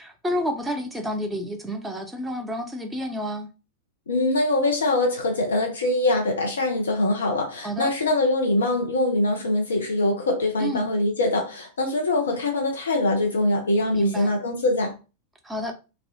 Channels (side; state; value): both; inverted; correlation -0.43